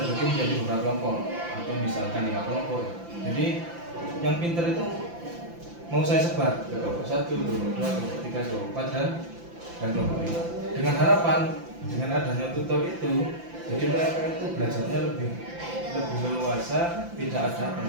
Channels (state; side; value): late; left; 5.9 ms